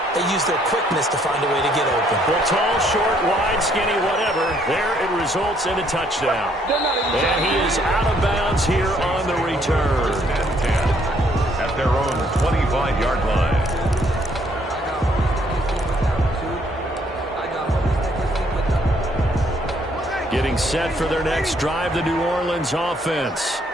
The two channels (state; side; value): normal; both; correlation 0.67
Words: they use their quickness to find a way to get open. Well, tall, short, wide, skinny, whatever. There it results in a touchdown. And he is out of bounds here on the return. At their own 25-yard line. Getting set for their next drive, the New Orleans offense.